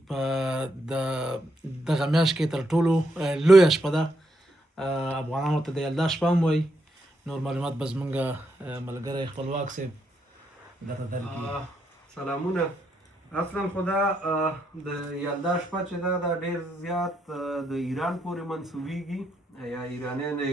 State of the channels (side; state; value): both; normal; correlation 0.79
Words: په دغه میاشت کې تر ټولو لویه شپه ده. افغانانو ته د یلدا شپه هم وایي. نور معلومات به زمونږ ملګری خپلواک صاحب درته درکړي. سلامونه. اصلا خو دا د یلدا شپه چې ده دا ډېر زیات د ایران پورې منسوبېږي یا ایرانیان